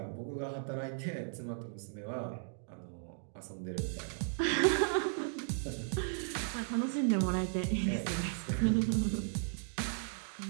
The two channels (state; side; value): silent; left; digital silence